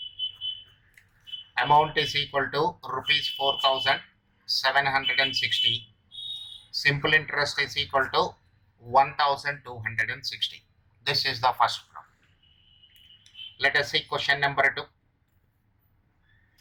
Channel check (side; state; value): both; identical; correlation 1.00